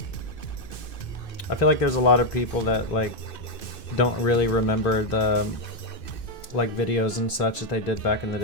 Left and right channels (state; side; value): late; right; 2.6 ms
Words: I feel like there's a lot of people that like don't really remember the like videos and such that they did back in the